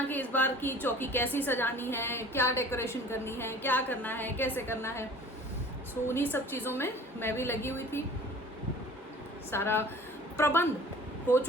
कि इस बार की चौकी कैसी सजानी है, क्या डेकोरेशन करनी है, क्या करना है, कैसे करना है। सो उन्हीं सब चीज़ों में मैं भी लगी हुई थी। सारा प्रबंध हो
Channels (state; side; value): normal; both; correlation 0.46